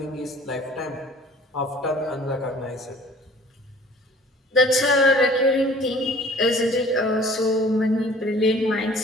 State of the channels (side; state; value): both; normal; correlation 0.51